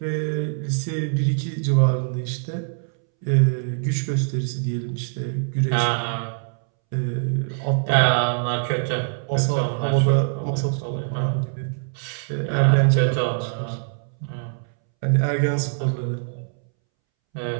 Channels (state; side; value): silent; left; 63 dB below the other